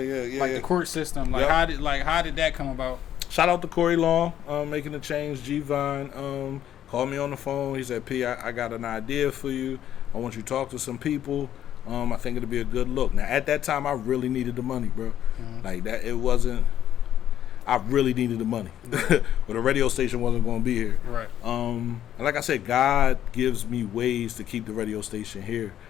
court system. Like how did that come about? shout out to Corey Long, making the change. G-Vine called me on the phone. He said, P, I got an idea for you. I want you to talk to some people. I think it'll be a good look. Now, at that time, I really needed the money, bro. Like that, it wasn't. I really needed the money, but the radio station wasn't going to be here. Right. And like I said, God gives me ways to keep the radio station here.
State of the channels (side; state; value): right; quieter; 11.0 dB